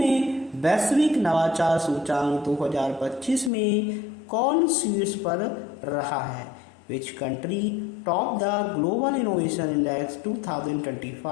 वैश्विक नवाचार सूचांक 2025 में कौन शीर्ष पर रहा है? Which country top the global innovation index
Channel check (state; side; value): drops out; right; at 3.5 s